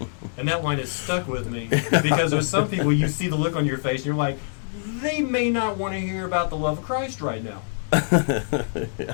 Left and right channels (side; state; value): right; silent; digital silence